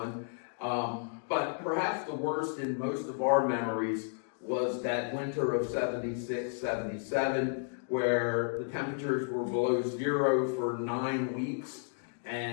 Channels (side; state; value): right; silent; digital silence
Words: But perhaps the worst in most of our memories was that winter of 76, 77, where the temperatures were below 0 for 9 weeks,